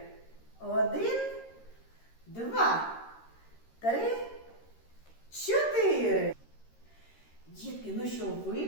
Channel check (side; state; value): right; late; 13 ms